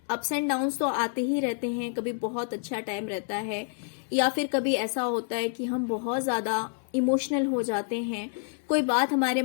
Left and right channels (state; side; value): silent; right; 59 dB below the other